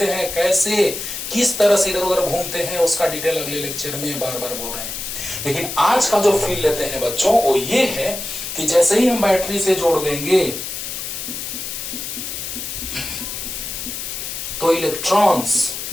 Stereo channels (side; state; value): left; noise; hiss, 6 dB below the sound